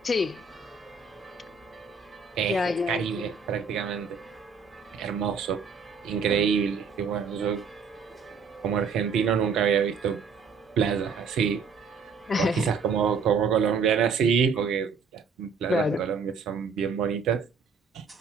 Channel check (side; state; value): left; quieter; 5.1 dB